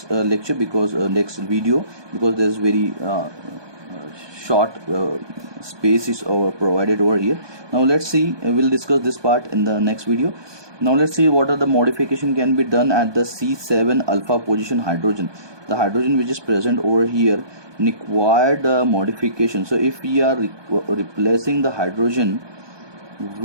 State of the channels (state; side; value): late; left; 1.2 ms